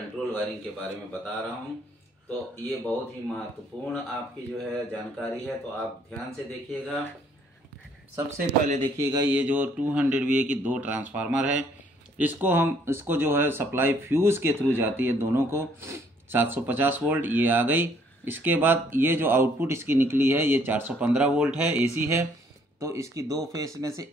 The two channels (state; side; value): normal; both; correlation 0.64